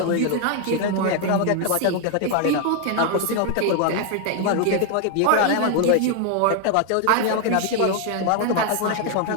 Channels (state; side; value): different; both; correlation 0.00